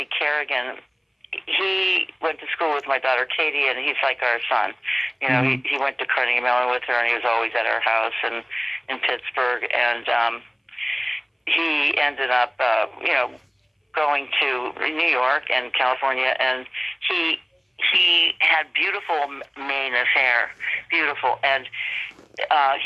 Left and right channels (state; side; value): identical; both; correlation 1.00